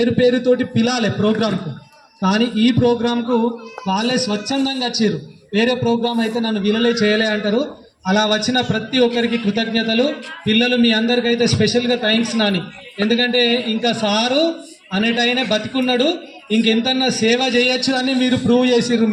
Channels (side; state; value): both; identical; correlation 1.00